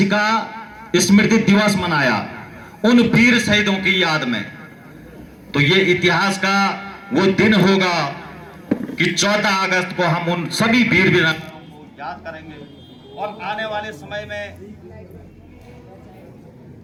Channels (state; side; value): identical; both; correlation 1.00